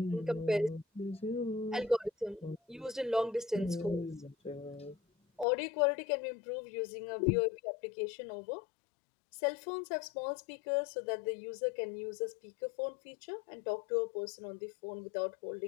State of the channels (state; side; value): drops out; right; at 5.5 s